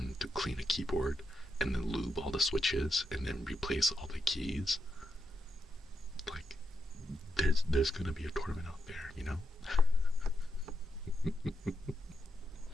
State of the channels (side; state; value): both; normal; correlation 0.84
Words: to clean a keyboard and then lube all the switches and then replace all the keys. Like, there's gonna be a tournament out there, you know?